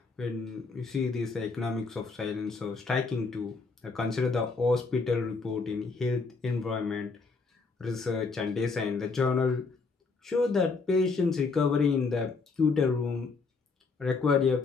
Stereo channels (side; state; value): right; quieter; 4.3 dB